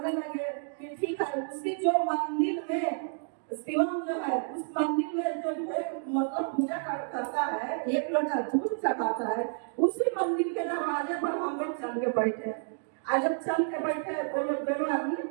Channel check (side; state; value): left; silent; digital silence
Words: लगे कि ठीक है, उसकी जो मंदिर में शिवम जो है उस मंदिर में जो मतलब पूजा करता है, एक लोटा दूध चढ़ाता है, उसी मंदिर के दरवाजे पर हम लोग चल के बैठे। आज जब चल के बैठे वो लोग दोनों आदमी